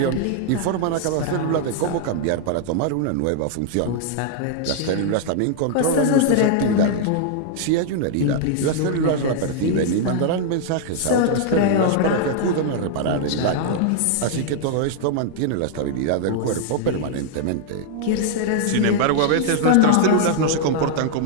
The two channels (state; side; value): different; both; correlation 0.00